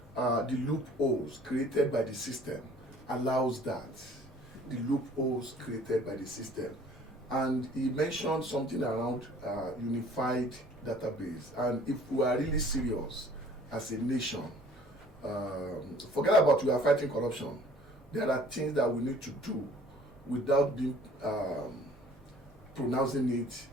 the loopholes created by the system allows that. The loopholes created by the system. And he mentioned something around unified database. And if we are really serious as a nation, forget about we are fighting corruption. There are things that we need to do without being pronouncing it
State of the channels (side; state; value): both; normal; correlation 0.53